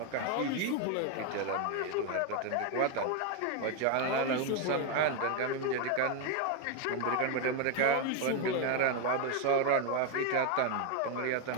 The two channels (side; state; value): both; different; correlation 0.01